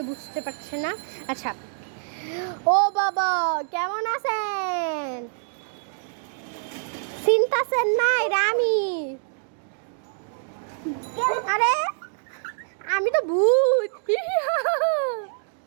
বুঝতে পারছেন না। আচ্ছা ও বাবা কেমন আছেন? চিন্তাছেন না এটা আমি। আরে আমি তো ভূত।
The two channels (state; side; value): silent; left; digital silence